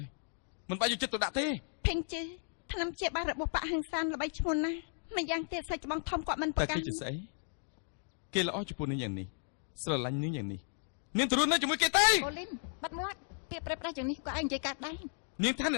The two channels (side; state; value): right; silent; 55 dB below the other